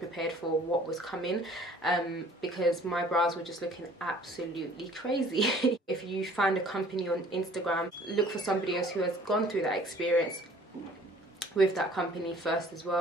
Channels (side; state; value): both; normal; correlation 0.53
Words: for what was coming, because my brows were just looking absolutely crazy. If you find a company on Instagram, look for somebody else who has gone through that experience with that company first as